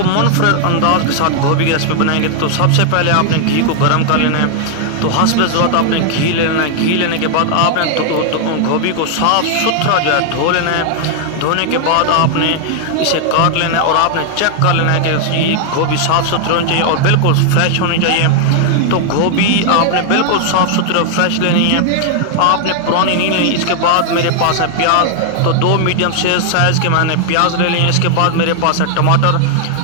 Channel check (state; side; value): different; both; correlation 0.00